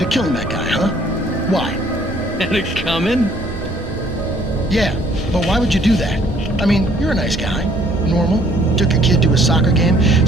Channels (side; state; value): both; normal; correlation 0.61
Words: killing that guy, huh? Why? Had it coming? Yeah, but why would you do that? I mean, you're a nice guy. Normal. Took your kid to a soccer game.